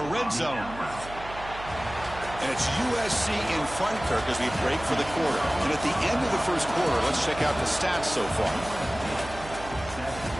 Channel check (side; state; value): right; noise; hum, 14 dB below the sound